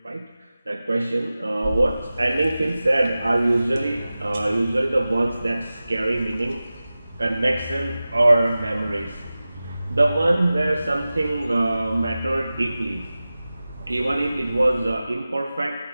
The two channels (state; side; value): inverted; both; correlation -0.96